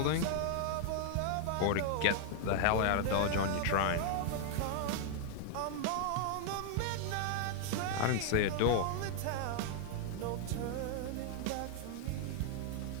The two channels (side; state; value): both; different; correlation 0.00